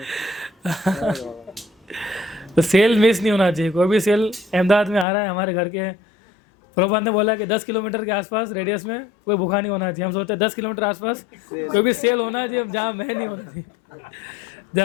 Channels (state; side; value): drops out; right; at 5.1 s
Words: तो सेल मिस नहीं होना चाहिए, कोई भी सेल अहमदाबाद में आ रहा है हमारे घर के, प्रभुपाद ने बोला कि 10 किलोमीटर के आसपास रेडियस में कोई भूखा नहीं होना चाहिए। हम सोचते हैं 10 किलोमीटर आसपास कोई भी सेल होना चाहिए, जहाँ मैं नहीं होना चाहिए,